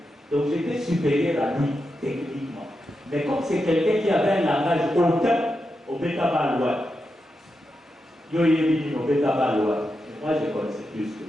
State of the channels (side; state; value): both; normal; correlation 0.87